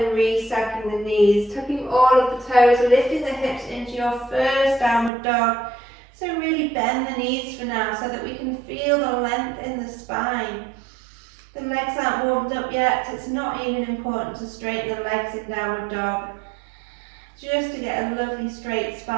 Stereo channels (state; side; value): drops out; left; at 5.1 s